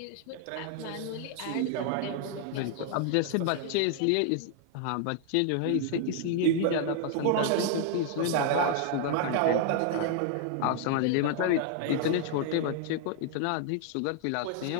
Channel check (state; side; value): different; both; correlation 0.00